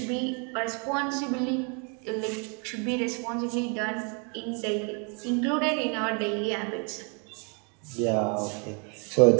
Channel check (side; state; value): left; quieter; 36.2 dB